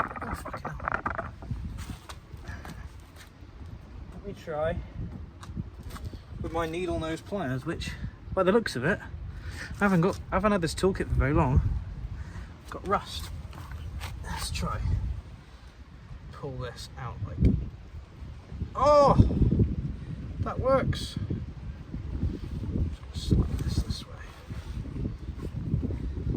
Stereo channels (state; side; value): identical; both; correlation 1.00